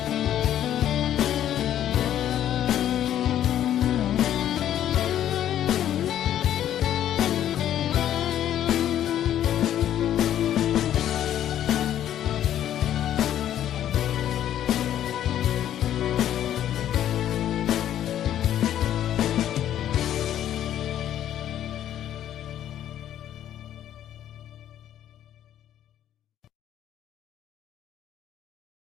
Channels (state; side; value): quieter; right; 11.2 dB